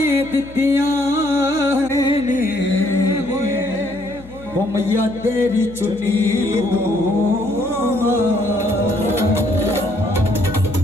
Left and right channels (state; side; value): noise; left; hum, 19 dB below the sound